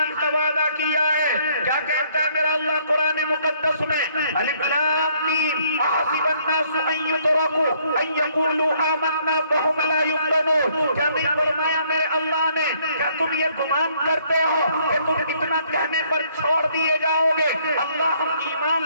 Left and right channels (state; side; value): inverted; both; correlation -0.65